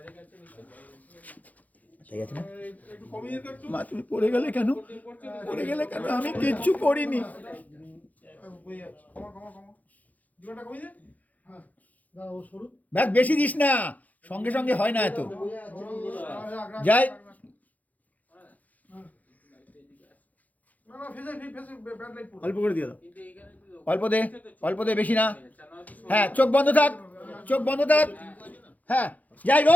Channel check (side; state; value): right; late; 0.078 ms